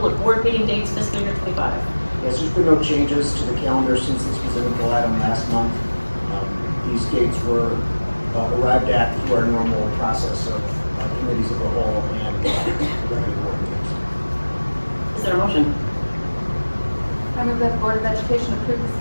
of board meeting dates fiscal year 25. Yes, there's been no changes to the calendar since this was an info item last month. These dates were arrived at through our normal process of committees of the whole and regular board meetings. Is there a motion? I move that the Board of Education approve the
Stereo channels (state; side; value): inverted; both; correlation -1.00